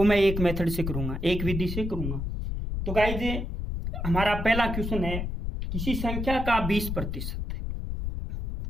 मैं एक मेथड से करूंगा, एक विधि से करूंगा। तो गाइज, हमारा पहला क्वेश्चन है, किसी संख्या का 20%,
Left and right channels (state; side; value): noise; left; rumble, 4 dB below the sound